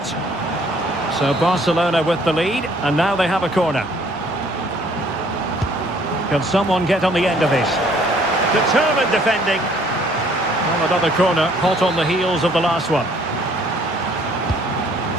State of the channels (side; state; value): both; normal; correlation 0.60